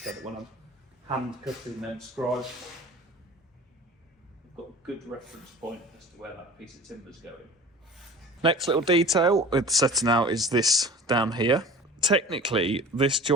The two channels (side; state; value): both; normal; correlation 0.41